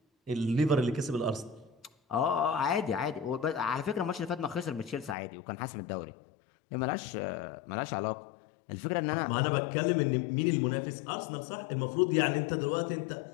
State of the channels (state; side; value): drops out; right; at 5.2 s